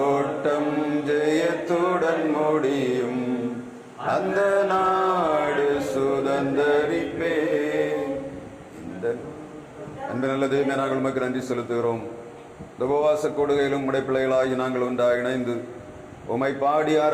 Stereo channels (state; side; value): identical; both; correlation 1.00